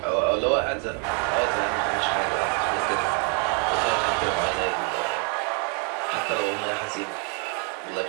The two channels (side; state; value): left; quieter; 38.9 dB